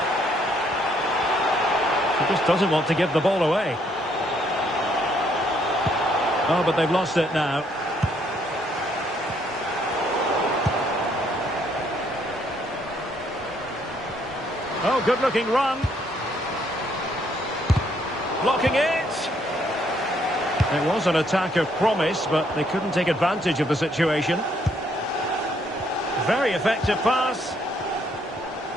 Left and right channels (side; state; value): both; normal; correlation 0.69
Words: She just doesn't want to give the ball away. Oh, but they've lost it now. Oh, good-looking run. Blocking it. It was an attack of promise, but they couldn't take advantage of the situation. Very effective pass.